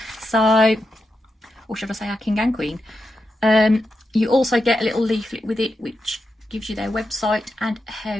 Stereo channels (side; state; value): both; normal; correlation 0.87